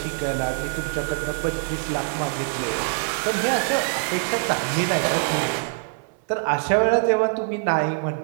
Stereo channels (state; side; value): silent; left; 63 dB below the other